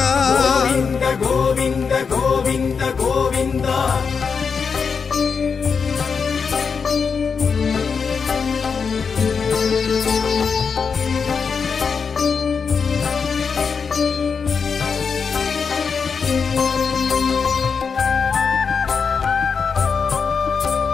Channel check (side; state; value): right; quieter; 5.7 dB